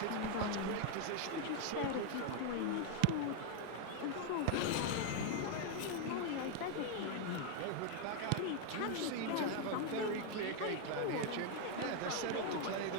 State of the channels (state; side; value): different; both; correlation 0.01